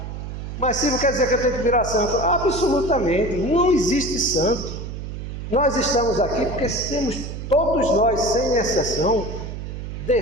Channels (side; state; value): right; noise; hum, 8 dB below the sound